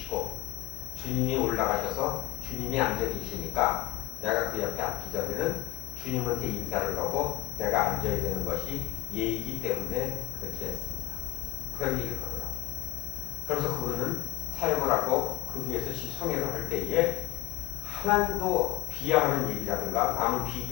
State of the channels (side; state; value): right; quieter; 19.7 dB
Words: 주님이 올라가셔서 주님이 앉아 계시니까 내가 그 옆에 앉기 전에는 주님한테 인사를 하고 내가 앉아야 되는 것이 예의이기 때문에 그렇게 했습니다. 그런 얘기를 하더라고요. 그래서 그분은 사역을 하고 그 위에서 성회를 할 때에 하나님도 비하하는 얘기라든가 남을